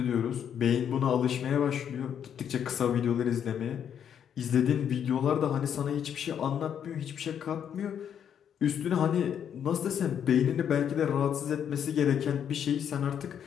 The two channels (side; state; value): right; quieter; 8.7 dB